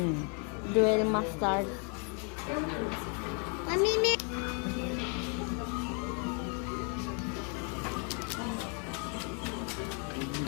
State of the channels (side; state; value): right; quieter; 38.0 dB